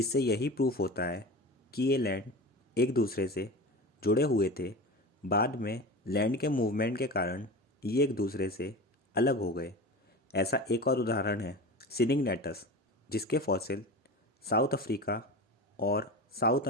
यही प्रूफ होता है कि ये लैंड एक दूसरे से जुड़े हुए थे। बाद में लैंड के मूवमेंट के कारण ये एक दूसरे से अलग हो गए। ऐसा एक और उदाहरण है सिनिगनेटस, जिसके फॉसिल साउथ अफ्रीका और साउथ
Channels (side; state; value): both; normal; correlation 0.30